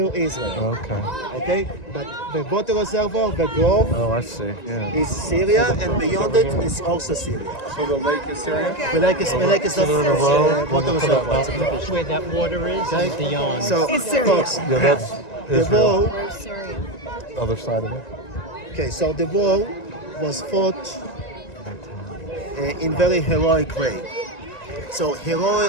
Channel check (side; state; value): right; late; 1.9 ms